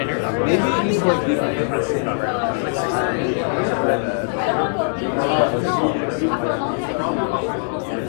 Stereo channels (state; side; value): silent; right; 65 dB below the other